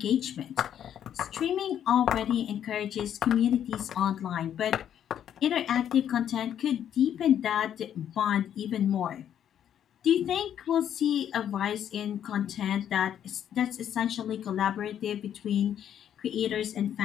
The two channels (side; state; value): right; quieter; 9.8 dB